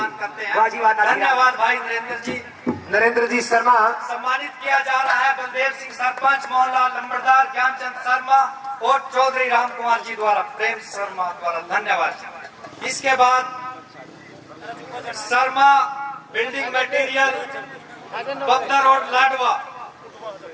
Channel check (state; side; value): identical; both; correlation 1.00